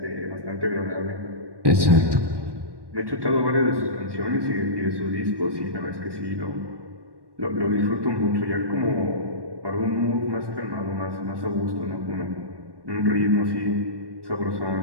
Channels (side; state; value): left; late; 1.1 ms